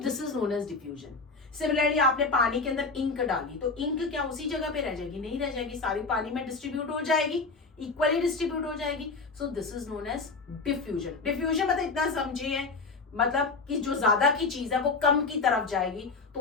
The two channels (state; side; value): quieter; right; 4.1 dB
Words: is known as diffusion. Similarly आपने पानी के अंदर इंक डाली, तो इंक क्या उसी जगह पे रह जाएगी? नहीं रह जाएगी, सारी पानी में डिस्ट्रीब्यूट हो जाएगी, इक्वली डिस्ट्रीब्यूट हो जाएगी। So this is known as diffusion. Diffusion मतलब इतना समझिए, मतलब कि जो ज्यादा की चीज है वो कम की तरफ जाएगी, तो